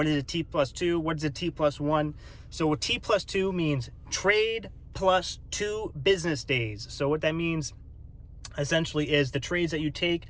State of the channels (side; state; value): both; identical; correlation 1.00